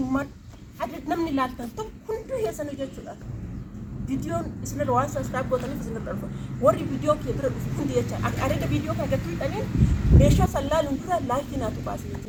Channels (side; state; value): both; identical; correlation 1.00